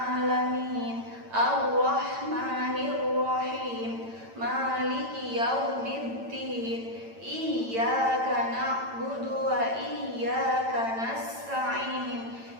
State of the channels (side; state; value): left; late; 8.9 ms